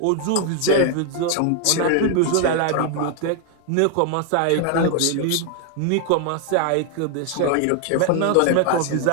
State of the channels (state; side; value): different; both; correlation 0.00